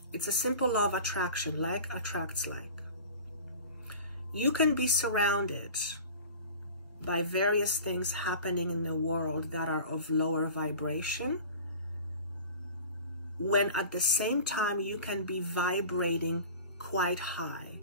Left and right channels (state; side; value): inverted; both; correlation -0.39